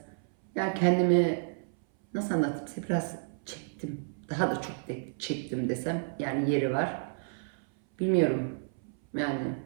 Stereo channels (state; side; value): silent; left; 57 dB below the other